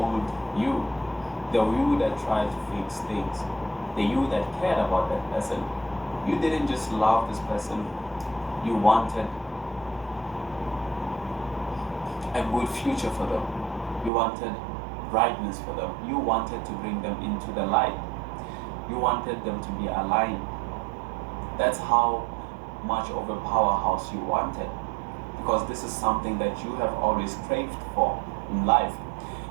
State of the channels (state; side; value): drops out; left; at 14.1 s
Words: you, the you that tried to fix things. the you that cared about that person. You didn't just love this person, you wanted a good future for them. You wanted brightness for them. You wanted to bring them into the light. You wanted them to be aligned. That's how much of a powerhouse you wanted, because this is something that you have always craved for in life.